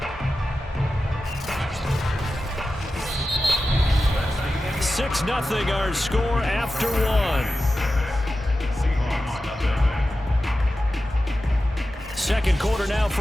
Nothing our score after 1. 2nd quarter now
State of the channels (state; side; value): normal; both; correlation 0.93